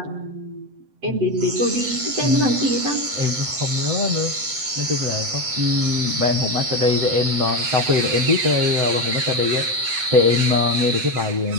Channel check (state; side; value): late; left; 7.9 ms